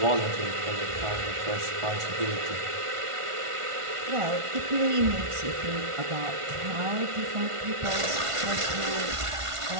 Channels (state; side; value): late; left; 1.5 ms